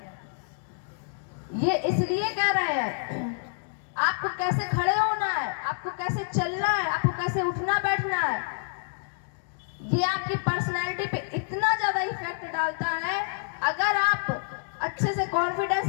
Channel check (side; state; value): right; silent; digital silence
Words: ये इसलिए कह रहे हैं आपको कैसे खड़े होना है, आपको कैसे चलना है, आपको कैसे उठना बैठना है। ये आपकी पर्सनैलिटी पे इतना ज्यादा इफेक्ट डालता है। अगर आप अच्छे से कॉन्फिडेंस